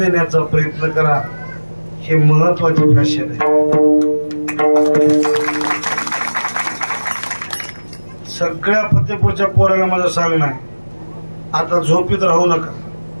प्रयत्न करा हे महत्वाचे फॅशन आहे सगळ्या फतेपूरच्या पोराला माझं सांगणं आहे आता झोपीत राहू नका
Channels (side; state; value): both; inverted; correlation -1.00